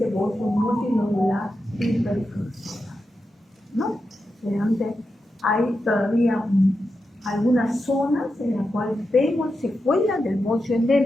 bocio multinodular hiperfuncional, ¿no? Realmente hay todavía algunas zonas en las cuales vemos secuelas del bocio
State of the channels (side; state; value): both; normal; correlation 0.89